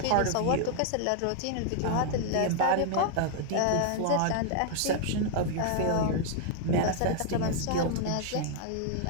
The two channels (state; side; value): different; both; correlation 0.00